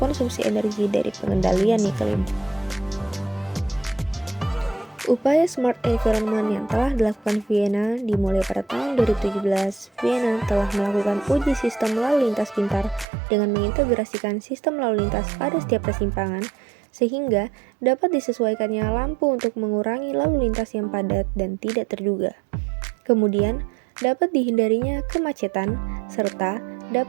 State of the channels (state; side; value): drops out; left; at 13.1 s